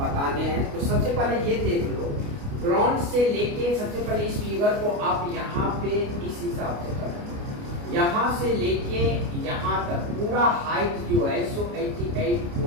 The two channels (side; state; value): left; late; 29 ms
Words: हैं। तो सबसे पहले ये देख लो, ग्राउंड से लेके सबसे पहले इस फिगर को आप यहाँ पे इस हिसाब से करें, यहाँ से लेके यहाँ तक पूरा हाइट जो है सो